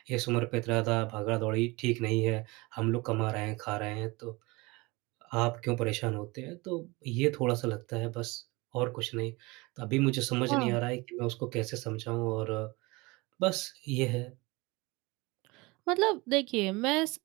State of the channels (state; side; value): quieter; left; 24.2 dB